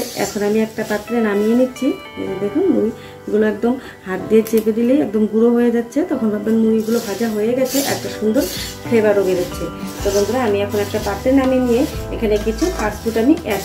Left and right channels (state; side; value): identical; both; correlation 1.00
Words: এখন আমি একটা পাত্রে নামিয়ে নিচ্ছি। দেখুন মুড়িগুলো একদম হাত দিয়ে চেপে দিলেই একদম গুঁড়ো হয়ে যাচ্ছে, তখন ভাববেন মুড়িগুলো ভাজা হয়ে গেছে, একটা সুন্দর ফ্লেভারও বেরোচ্ছে। তো বন্ধুরা আমি এখন একটা পাত্রে নামিয়ে নিয়ে এখানে কিছু ফাস্টফুড আমি অ্যাড